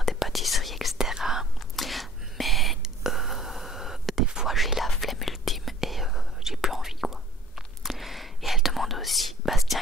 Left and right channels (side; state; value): both; normal; correlation 0.52